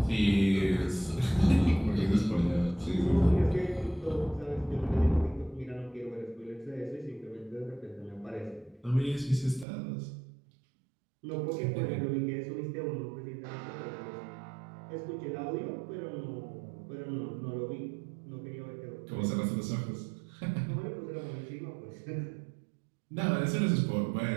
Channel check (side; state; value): left; drops out; at 9.7 s